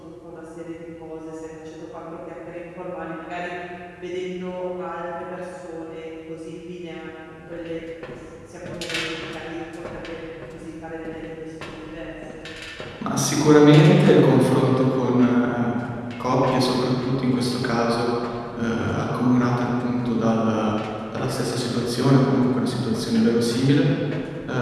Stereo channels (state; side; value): identical; both; correlation 1.00